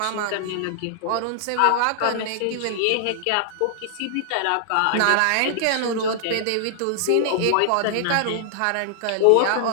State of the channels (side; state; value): both; different; correlation -0.01